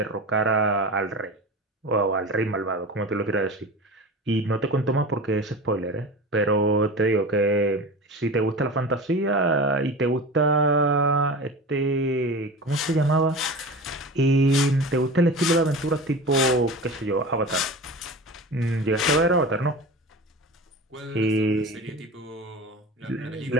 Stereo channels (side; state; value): both; normal; correlation 0.32